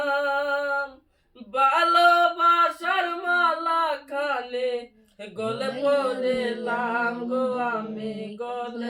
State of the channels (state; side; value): identical; both; correlation 1.00